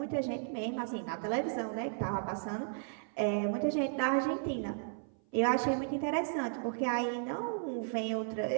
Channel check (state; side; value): silent; left; 55 dB below the other